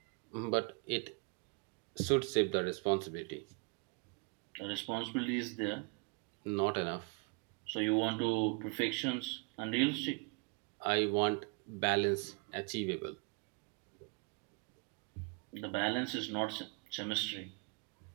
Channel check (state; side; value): quieter; left; 32.0 dB